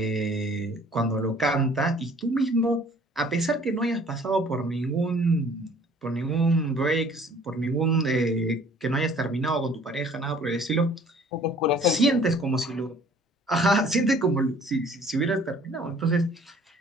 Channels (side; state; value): both; normal; correlation 0.54